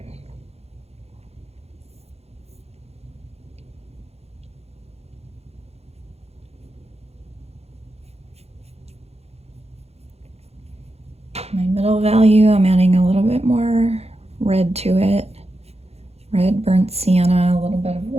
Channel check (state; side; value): late; left; 0.30 ms